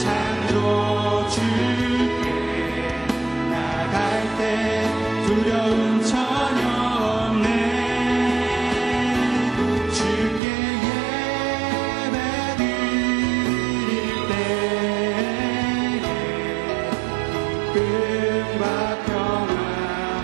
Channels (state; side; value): drops out; left; at 10.4 s